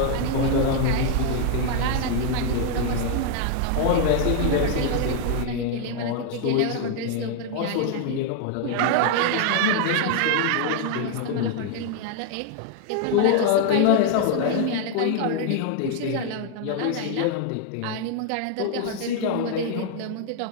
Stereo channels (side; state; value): both; different; correlation 0.00